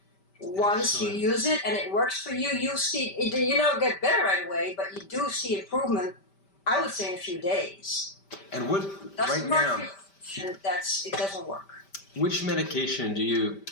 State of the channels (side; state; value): right; late; 5.1 ms